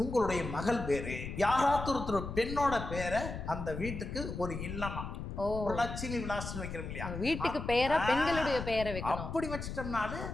உங்களுடைய மகள் வேறு, யாராவது ஒருத்தர் பெண்ணோட பேரை அந்த வீட்டுக்கு ஒரு இல்லமா ஒரு லட்சுமி விலாசம் வைக்கிறோம் இல்லையா, வீட்டுக்கு பேரா பெண்களுடைய பேரை வைக்கணும். அப்படி வச்சிட்டோம்னாலே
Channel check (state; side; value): noise; left; rumble, 7 dB below the sound